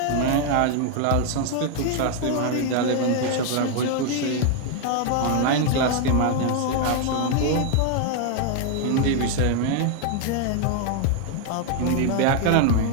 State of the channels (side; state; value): both; different; correlation 0.00